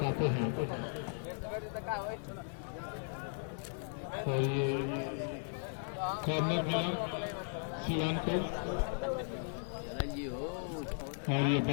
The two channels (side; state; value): right; silent; 53 dB below the other